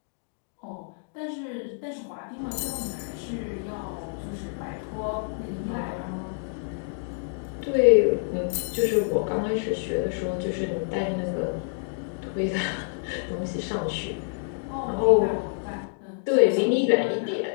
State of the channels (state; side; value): silent; right; digital silence